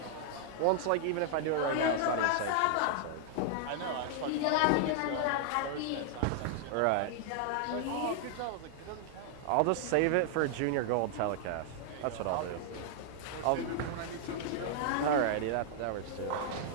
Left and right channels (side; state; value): both; different; correlation 0.00